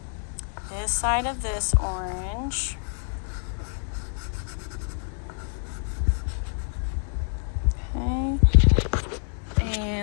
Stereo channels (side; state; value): right; silent; 60 dB below the other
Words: this side of this orange, okay,